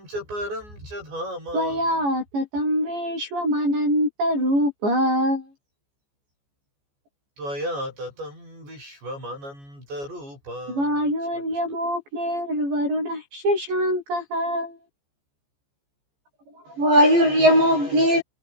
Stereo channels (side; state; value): left; late; 14 ms